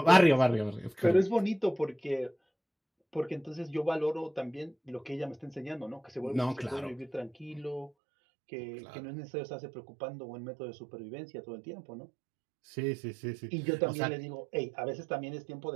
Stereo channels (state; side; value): drops out; left; at 7.9 s